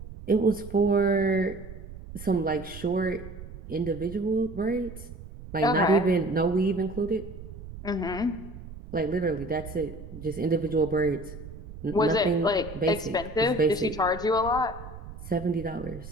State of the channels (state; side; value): noise; right; rumble, 13 dB below the sound